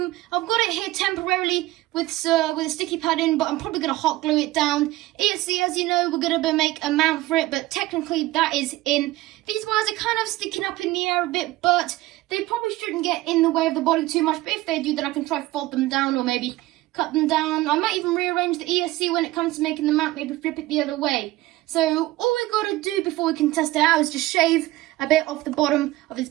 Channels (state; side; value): quieter; left; 17.7 dB